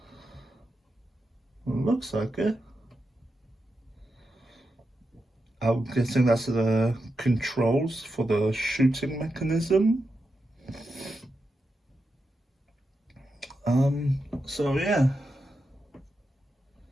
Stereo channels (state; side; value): normal; both; correlation 0.88